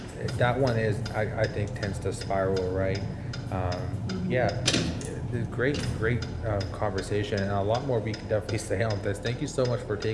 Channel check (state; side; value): identical; both; correlation 1.00